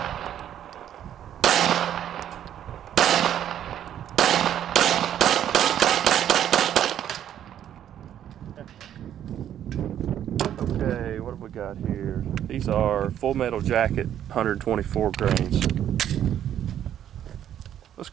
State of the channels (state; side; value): quieter; left; 10.5 dB